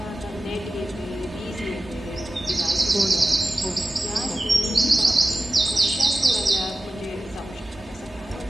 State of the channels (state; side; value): normal; both; correlation 0.95